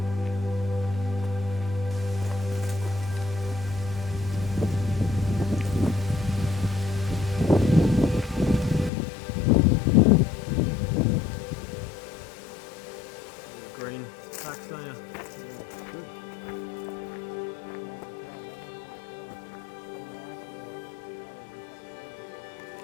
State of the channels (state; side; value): drops out; right; at 8.9 s